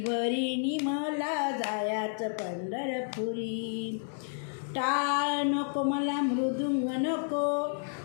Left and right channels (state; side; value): silent; right; digital silence